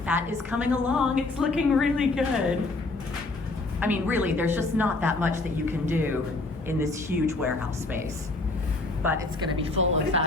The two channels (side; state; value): right; quieter; 3.2 dB